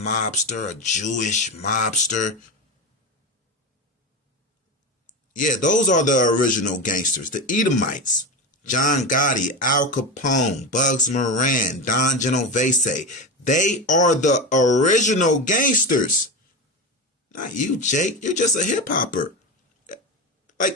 a Jewish mobster. Yeah, those are the original gangsters, the Edomites. John Gotti, Al Capone, Bugs Moran, Don Genovese. They are the original gangsters. Not you, Jake. You're just a hip hopper.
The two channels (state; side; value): normal; both; correlation 0.20